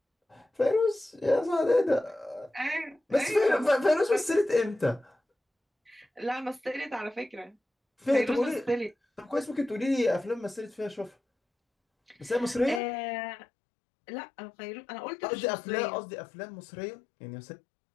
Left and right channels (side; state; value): right; drops out; at 12.8 s